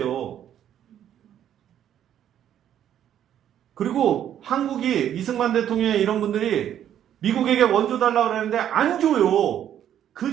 그리고 한국이 이승만 대통령의 이런 분들이 미국에게 원조 달라고 그러는데 안 줘요. 그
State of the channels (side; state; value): left; quieter; 10.4 dB